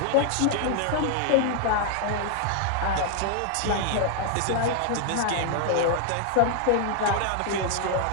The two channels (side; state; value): both; different; correlation 0.00